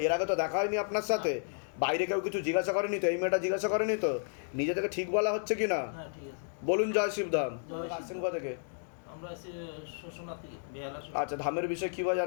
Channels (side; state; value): right; silent; digital silence